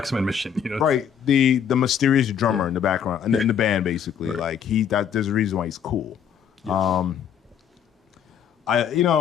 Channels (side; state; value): right; quieter; 8.3 dB